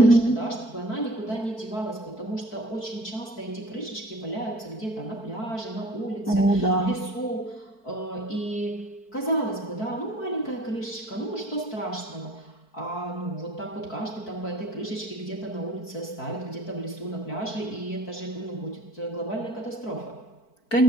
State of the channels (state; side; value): late; right; 4.5 ms